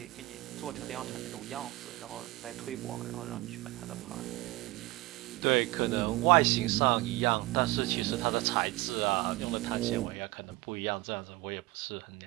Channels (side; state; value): left; quieter; 20.3 dB